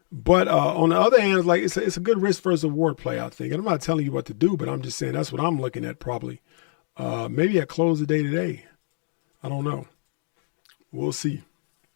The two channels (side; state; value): right; silent; digital silence